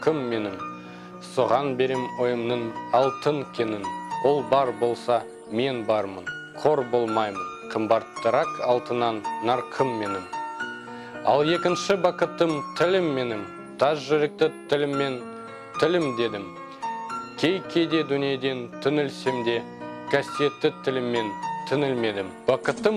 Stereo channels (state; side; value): identical; both; correlation 1.00